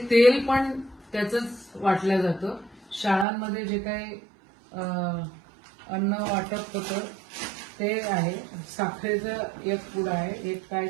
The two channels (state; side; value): drops out; left; at 3.2 s